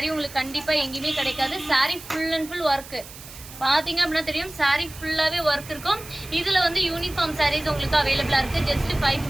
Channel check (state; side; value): noise; right; hiss, 16 dB below the sound